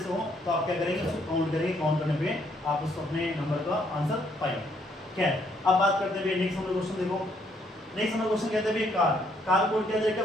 हो तो आप क्या करेंगे उसको काउंट करेंगे, काउंट करने पे आप उसको अपने नंबर का आंसर पाएंगे। क्या है, अब बात करते हैं भैया नेक्स्ट नंबर क्वेश्चन। देखो नेक्स्ट नंबर क्वेश्चन कहते हैं भैया कार कोड क्या दे रखा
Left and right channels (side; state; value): both; normal; correlation 0.70